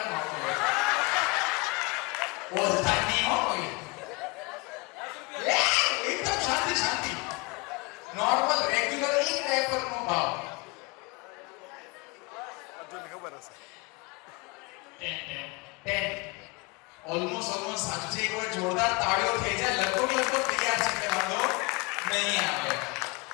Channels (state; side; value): quieter; right; 27.3 dB